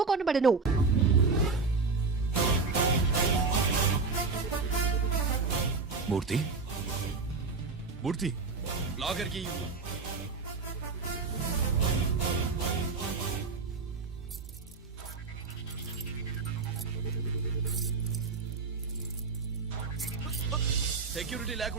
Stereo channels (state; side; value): quieter; left; 4.4 dB